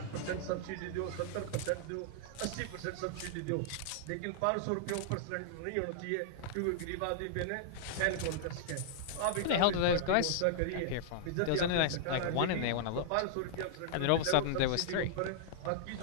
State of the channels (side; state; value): both; different; correlation -0.01